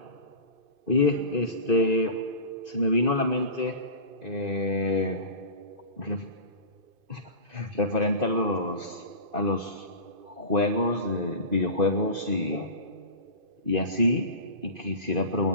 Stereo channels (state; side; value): late; left; 2.5 ms